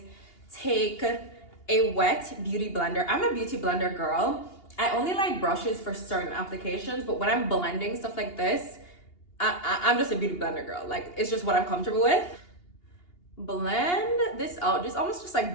take a wet beauty blender. I'm a beauty blender girl. I only like brushes for certain applications, but when I'm blending stuff like this, I'm just a beauty blender girl. Like it's just what I'm comfortable with. Blend this out, just almost just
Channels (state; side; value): late; right; 2.8 ms